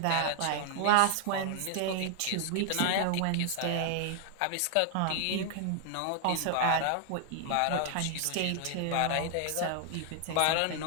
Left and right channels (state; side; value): different; both; correlation 0.00